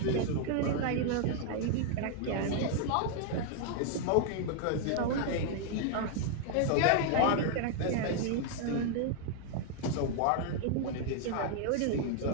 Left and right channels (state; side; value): different; both; correlation 0.00